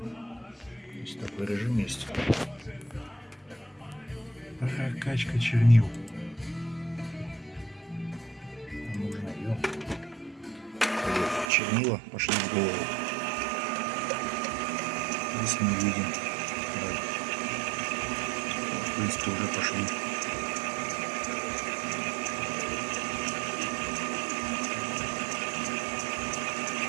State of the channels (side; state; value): left; drops out; at 11.5 s